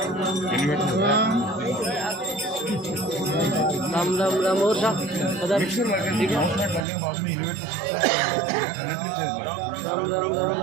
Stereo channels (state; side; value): drops out; left; at 6.9 s